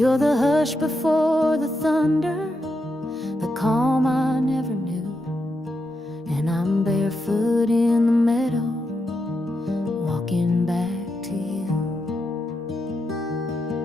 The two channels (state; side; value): normal; both; correlation 0.84